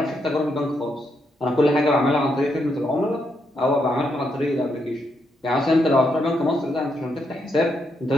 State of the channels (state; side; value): normal; both; correlation 0.79